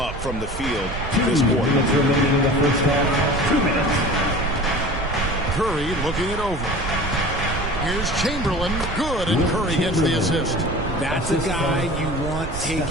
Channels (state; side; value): noise; right; rumble, 8 dB below the sound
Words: from the field this quarter. 2 minutes remaining in the first half. 2 minutes. Curry looking it over. Here's Chamberlain. Good, and Curry gets the assist. That's a guy you want